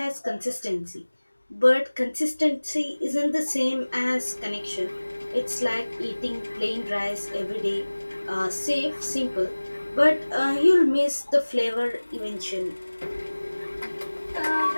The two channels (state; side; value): inverted; both; correlation -1.00